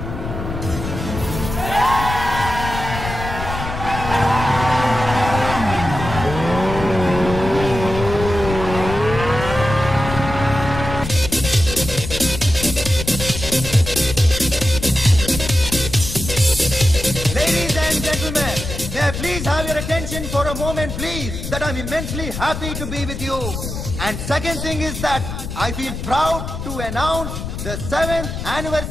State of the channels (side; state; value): left; noise; rumble, 7 dB below the sound